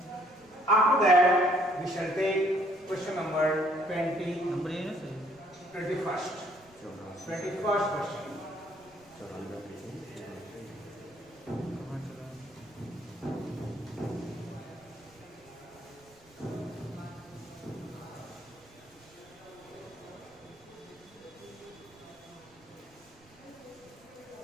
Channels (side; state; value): right; noise; rumble, 28 dB below the sound